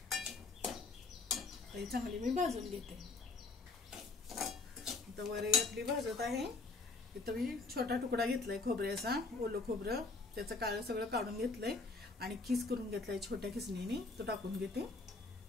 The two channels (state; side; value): quieter; right; 3.7 dB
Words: ही चांगली मी भाजून घेते. आता वरई आपली भाजत आहे. इथं मी छोटा तुकडा घेतलाय खोबऱ्याचा, ओलं खोबरं, त्याचं काळं सगळं काढून घेतलंय आणि खीस करून घेतलाय छोट्या खिसणीने. तो टाकून घेते.